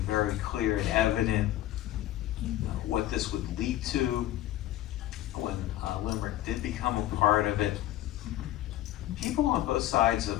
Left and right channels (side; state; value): right; quieter; 14.1 dB